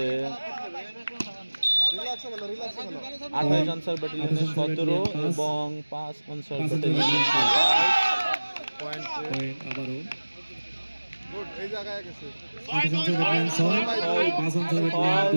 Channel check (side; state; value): both; inverted; correlation -1.00